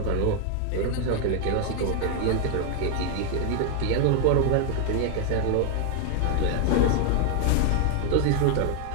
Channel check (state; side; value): different; both; correlation 0.00